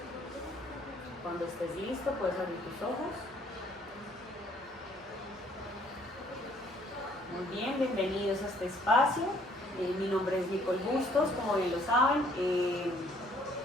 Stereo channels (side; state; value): right; noise; hum, 26 dB below the sound